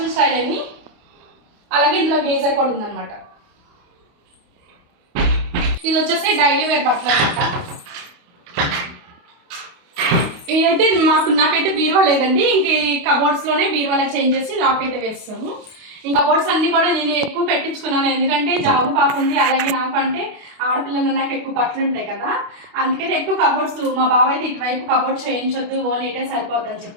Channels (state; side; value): late; left; 28 ms